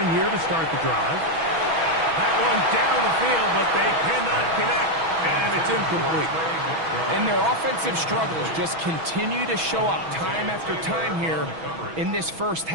here to start the drive. That one down the field, but they cannot connect, and it's incomplete. And their offensive struggles just continue to show up time after time here in this first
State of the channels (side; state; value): left; late; 6.2 ms